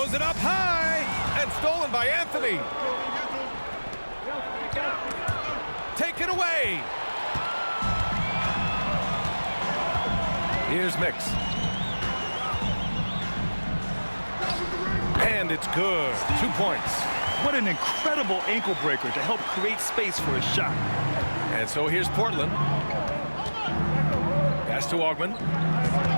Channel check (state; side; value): inverted; both; correlation -1.00